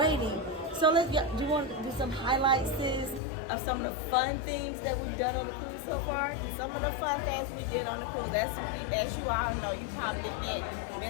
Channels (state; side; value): drops out; right; at 3.2 s